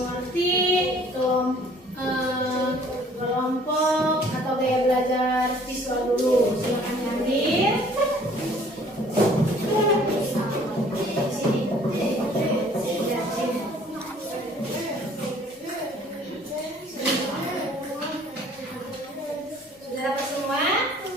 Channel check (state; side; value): normal; both; correlation 0.55